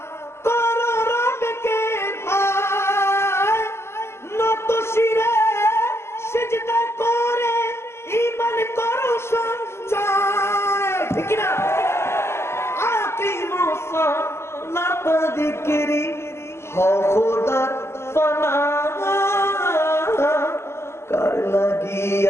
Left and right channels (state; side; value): late; right; 0.12 ms